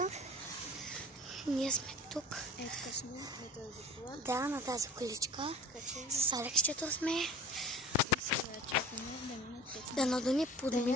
Ние сме тук. Ето сме на тази кола. Да, на тази количка. С Алексчето сме. И сега чакаме да минат 5. Да надуни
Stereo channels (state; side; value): normal; both; correlation 0.40